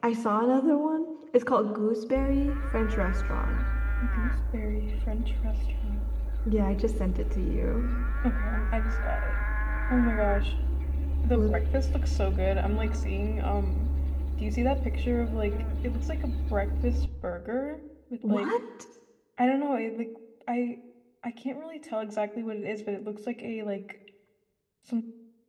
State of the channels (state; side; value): identical; both; correlation 1.00